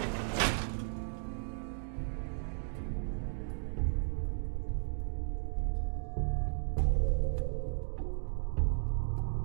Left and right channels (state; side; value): silent; left; digital silence